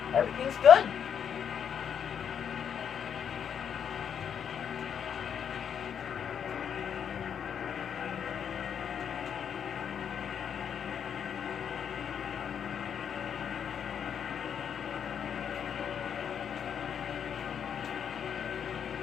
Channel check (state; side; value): quieter; right; 8.0 dB